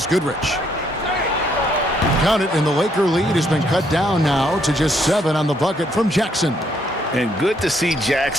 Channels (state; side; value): normal; both; correlation 0.71